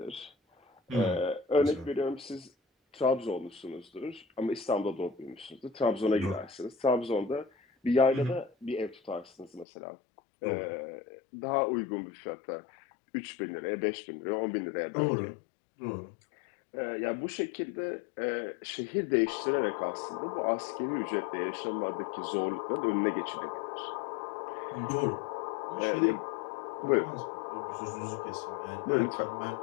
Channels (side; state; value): right; drops out; at 9.7 s